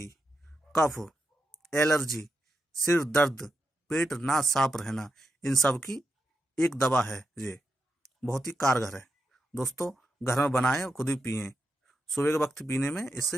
कफ, एलर्जी, सिर दर्द, पेट ना साफ रहना, इन सब की एक दवा है। ये बहुत ही कारगर है दोस्तों। घर में बनाएं और खुद ही पिएं। सुबह के वक्त पीने में इससे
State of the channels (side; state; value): both; normal; correlation 0.86